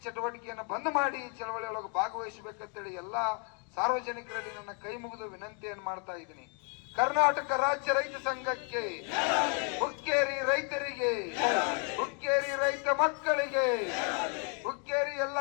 ಚಟುವಟಿಕೆಯನ್ನ ಬಂದ್ ಮಾಡಿ ಚಳವಳಿ ಒಳಗೆ ಭಾಗವಹಿಸಬೇಕಂತೇಳಿ ಎಲ್ಲಾ ಸಾರ್ವಜನಿಕರಲ್ಲಿ ನನ್ನ ಕೈ ಮುಗಿದು ವಿನಂತಿಯನ್ನು ಮಾಡ್ತಾ ಇದ್ದೀನಿ. ಕರ್ನಾಟಕ ರಾಜ್ಯ ರೈತ ಸಂಘಕ್ಕೆ, ಹುಕ್ಕೇರಿ ರೈತರಿಗೆ, ಹುಕ್ಕೇರಿ ರೈತ ಮಕ್ಕಳಿಗೆ, ಹುಕ್ಕೇರಿ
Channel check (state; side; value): quieter; right; 39.2 dB